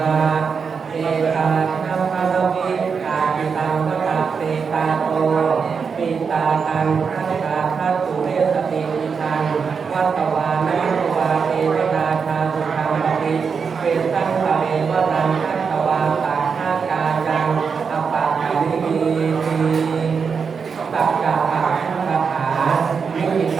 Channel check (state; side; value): quieter; left; 5.8 dB